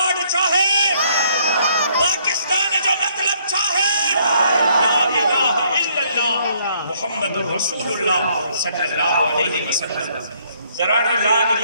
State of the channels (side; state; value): both; inverted; correlation -0.66